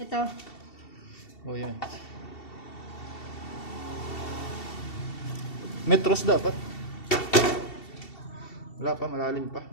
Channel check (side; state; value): right; late; 2.7 ms